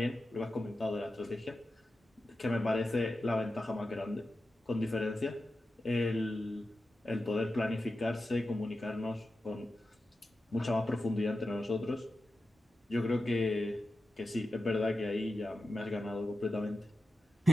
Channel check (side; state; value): both; normal; correlation 0.92